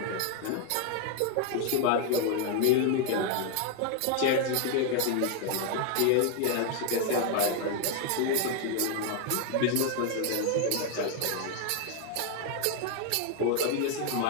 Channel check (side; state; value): both; different; correlation 0.00